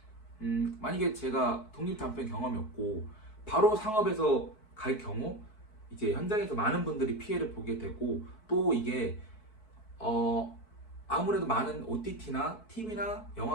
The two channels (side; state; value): right; late; 4.6 ms